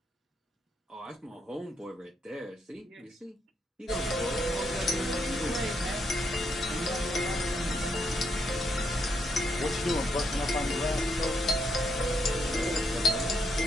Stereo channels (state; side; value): normal; both; correlation 0.77